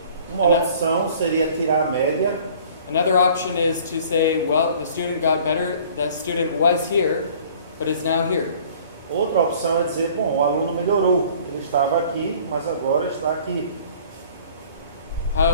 Uma opção seria tirar a média. Another option is to say, well, the student got better, the student was here, but is now here. Outra opção é dizer, bom, o aluno melhorou, ele estava aqui, mas agora está aqui.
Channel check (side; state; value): both; inverted; correlation -0.51